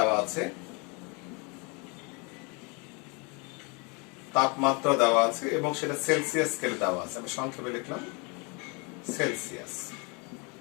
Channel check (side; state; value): right; quieter; 30.9 dB